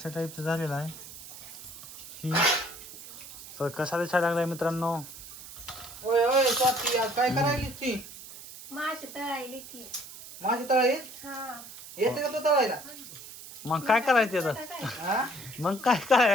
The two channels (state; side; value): noise; right; hiss, 15 dB below the sound